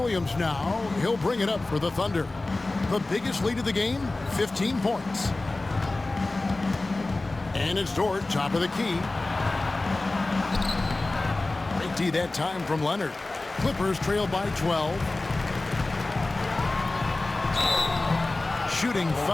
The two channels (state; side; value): quieter; right; 3.1 dB